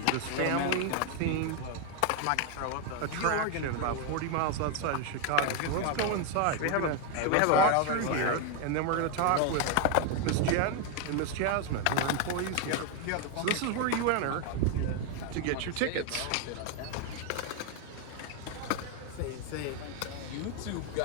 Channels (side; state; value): both; different; correlation 0.01